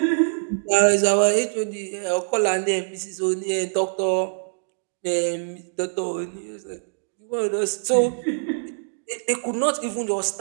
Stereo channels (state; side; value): silent; left; digital silence